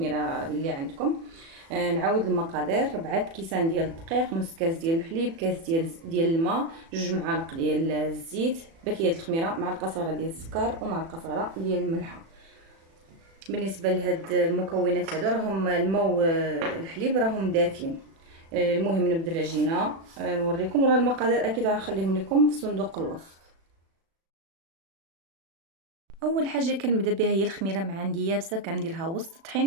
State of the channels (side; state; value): left; late; 36 ms